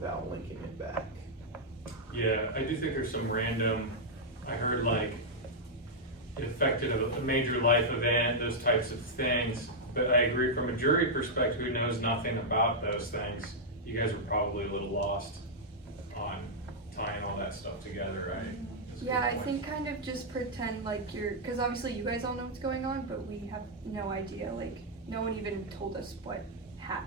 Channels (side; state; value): both; normal; correlation -0.05